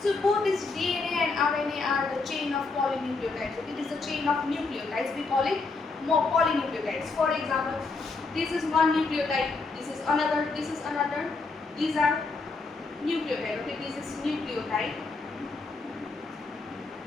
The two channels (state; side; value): quieter; right; 3.9 dB